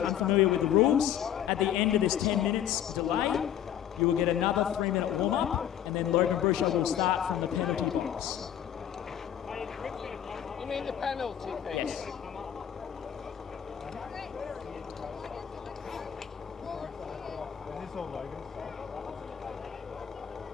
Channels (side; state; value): right; quieter; 10.2 dB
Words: with the rules, at the end of this 10 minutes delay, you will get another 3-minute warm-up, and then Logan Brucia will start from the penalty box. You mean the penalty thing? Yes.